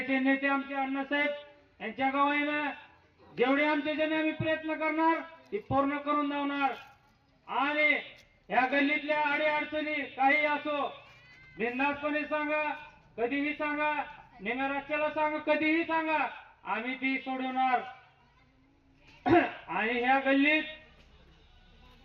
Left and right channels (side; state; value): both; identical; correlation 1.00